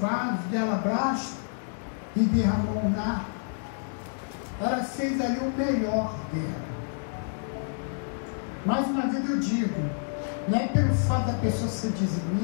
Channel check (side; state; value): right; silent; 59 dB below the other